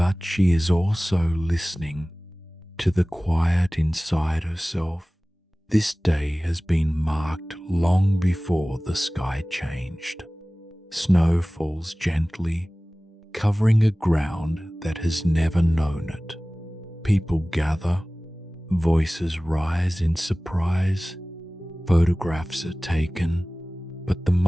she is also listening to the quiet inside herself. This day has been marked long before the sky changed. Snow falls gently, covering a ground that has never known it. People gather, voices rise in surprise, photographs are taken, but the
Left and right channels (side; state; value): both; normal; correlation 0.98